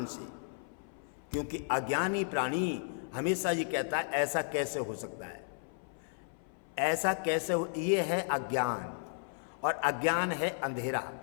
से, क्योंकि अज्ञानी प्राणी हमेशा ये कहता है ऐसा कैसे हो सकता है, ऐसा कैसे हो। ये है अज्ञान, और अज्ञान है अंधेरा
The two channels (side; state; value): right; silent; 55 dB below the other